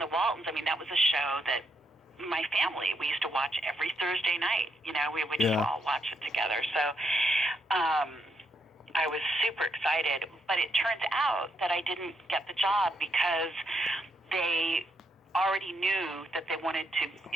Waltons, that was a show that my family, we used to watch every Thursday night. We would just all watch it together. So I was super excited, but it turns out that I didn't get the job because they already knew that they wanted to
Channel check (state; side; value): normal; both; correlation 0.78